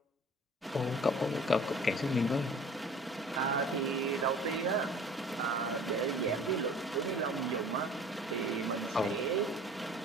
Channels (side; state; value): both; normal; correlation 0.46